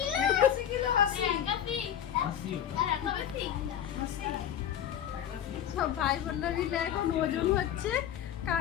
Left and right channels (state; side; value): quieter; right; 10.0 dB